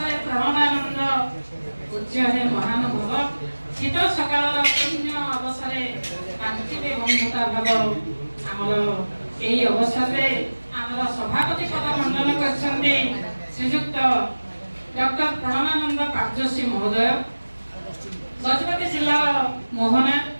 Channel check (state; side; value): inverted; both; correlation -1.00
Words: ପ୍ରେରଣାନନ୍ଦ। ପୂଜ୍ୟ ହେ ମହାନୁଭବ, ଶୀତ ସକାଳର ପୁଣ୍ୟ ଅବସରେ କାନ୍ତିବେ ବନ୍ଧୁତା ଭାବ। ଆମର ଏହି ଅବସରରେ ଆମର ସଭାପତି ପଦ ମଣ୍ଡନ କରିଛନ୍ତି ଶ୍ରୀଯୁକ୍ତ ଡକ୍ଟର ପ୍ରେରଣାନନ୍ଦ କାର୍ଯ୍ୟଶ୍ରୀ ମହୋଦୟ, ଗଜପତି ଜିଲ୍ଲାର ମୋହନା